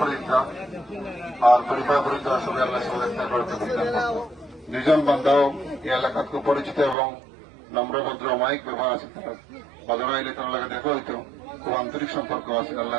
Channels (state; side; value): drops out; left; at 7.0 s